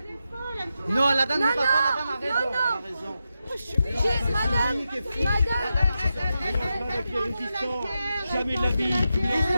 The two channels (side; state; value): both; inverted; correlation -0.88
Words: Non, la dame n'a pas raison. La dame a raison. Madame, Jamais de la vie, tu me